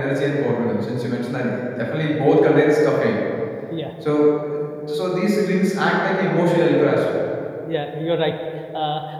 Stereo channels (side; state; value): both; identical; correlation 1.00